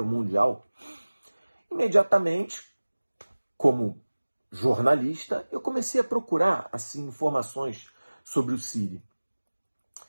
o Mundial, imediatamente, como jornalista, eu comecei a procurar assim, informações sobre o City.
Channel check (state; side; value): inverted; both; correlation -1.00